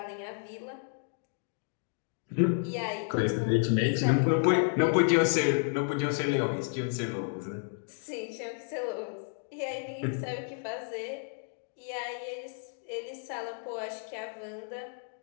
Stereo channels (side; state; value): right; silent; 57 dB below the other